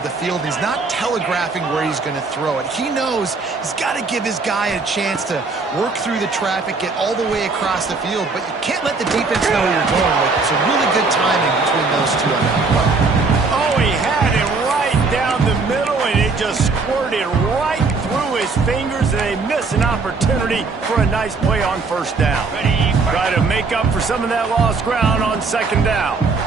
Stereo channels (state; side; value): quieter; left; 4.2 dB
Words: the field. He's not telegraphing where he's going to throw it. He knows he's got to give his guy a chance to work through the traffic, get all the way across the field, but you can't let the defense know where you're going with it. So really good timing between those two on that play. Oh, he had it right down the middle, and it just squirted right through his fingers, and they miss an opportunity for a nice play on first down. Try to make up for some of that lost ground on second down.